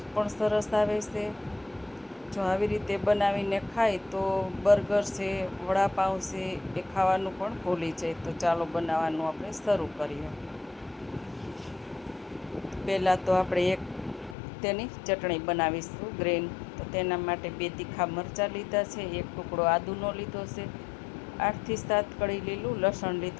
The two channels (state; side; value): drops out; right; at 14.4 s